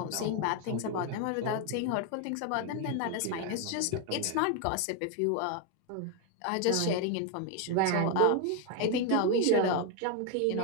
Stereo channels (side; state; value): both; different; correlation 0.01